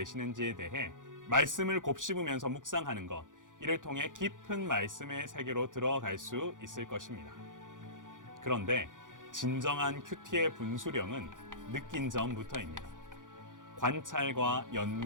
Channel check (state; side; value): late; left; 0.88 ms